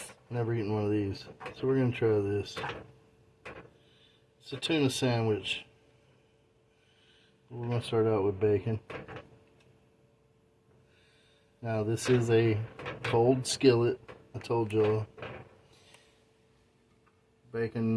never eaten one of these. So we're going to try this. It's a tuna sandwich. We're going to start out with bacon. Now this is a cold skillet. I told y'all.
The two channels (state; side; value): identical; both; correlation 1.00